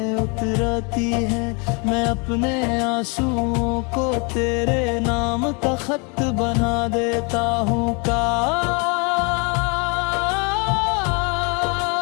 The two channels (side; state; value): right; quieter; 32.6 dB